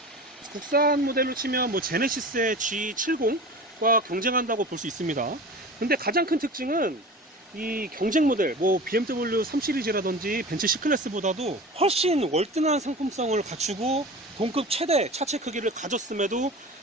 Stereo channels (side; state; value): both; normal; correlation 0.35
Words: 국산 모델로 치면 뭐 제네시스의 G70과 경쟁한다고 볼 수 있습니다. 근데 가장 큰 특징은 이 경쟁 모델, 뭐 BMW 3 시리즈라든지 벤츠 C클래스보다도 훨씬 월등한 상품성을 갖추고 동급 최대 차체 크기를 가졌음에도